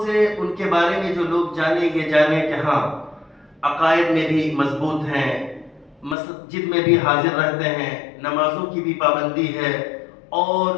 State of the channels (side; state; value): right; drops out; at 6.2 s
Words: سے ان کے بارے میں جو لوگ جانیں یہ جانیں کہ ہاں عقائد میں بھی مضبوط ہیں، مسجد میں بھی حاضر رہتے ہیں، نمازوں کی بھی پابندی ہے، اور